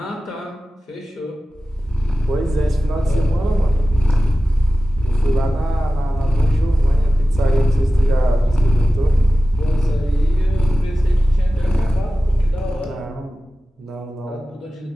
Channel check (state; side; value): normal; both; correlation 0.95